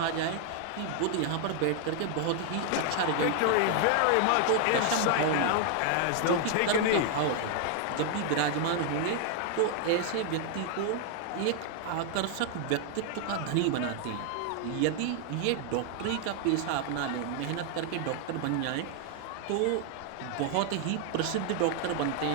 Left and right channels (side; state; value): both; different; correlation 0.00